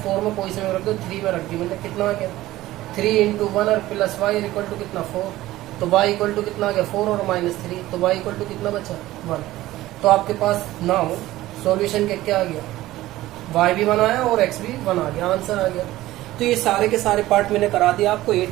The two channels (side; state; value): left; quieter; 16.3 dB